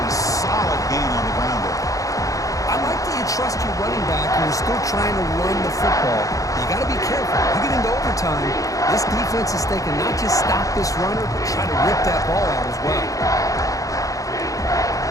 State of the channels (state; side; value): late; right; 0.16 ms